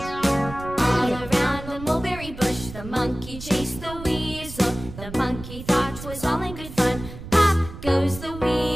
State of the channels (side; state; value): right; noise; rumble, 12 dB below the sound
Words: The monkey chased the weasel. The monkey thought 'twas all in good